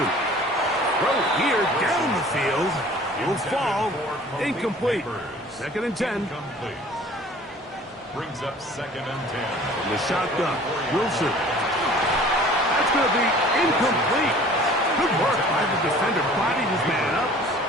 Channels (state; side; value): normal; both; correlation 0.48